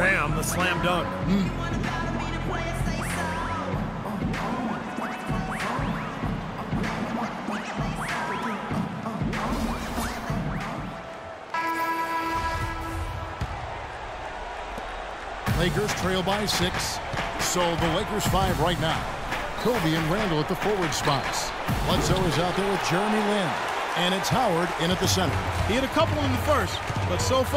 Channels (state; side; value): identical; both; correlation 1.00